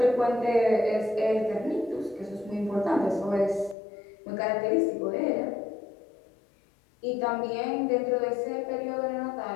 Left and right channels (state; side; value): drops out; right; at 3.8 s